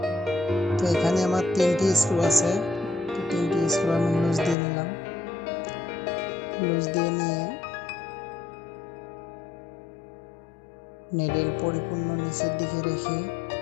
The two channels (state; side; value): drops out; right; at 4.5 s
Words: তো এখানে আমার 3টি স্ক্রু আছে। তো 3টি স্ক্রু আমি লুজ দিয়ে নিলাম। লুজ দিয়ে নিয়ে নিডেল পরিপূর্ণ নিচের দিকে রেখে